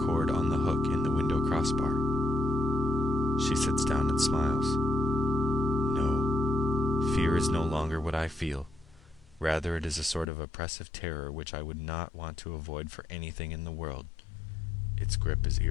cord on the hook in the window crossbar. She sits down and smiles. No, fear is no longer what I feel. Rather, it is a sort of oppressive terror which I would not want to avoid for anything in the world. Its grip is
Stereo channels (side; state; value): right; drops out; at 10.2 s